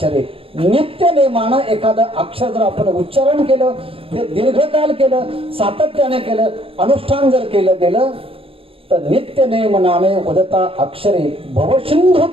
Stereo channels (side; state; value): left; late; 0.27 ms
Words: नित्य नेमानं एखादं अक्षर जर आपण उच्चारण केलं, ते दीर्घकाल केलं, सातत्याने केलं, अनुष्ठान जर केलं गेलं तर नित्य नेम नामे वदता अक्षरे भवसिंधू